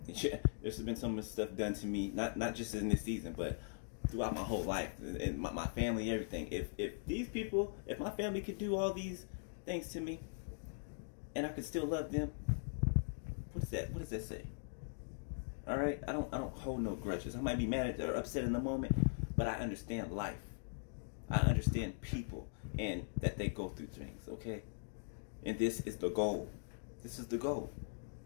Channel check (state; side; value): silent; right; digital silence